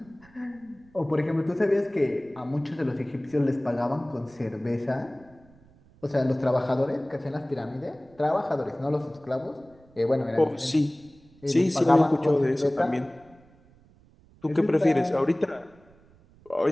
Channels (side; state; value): right; noise; rumble, 28 dB below the sound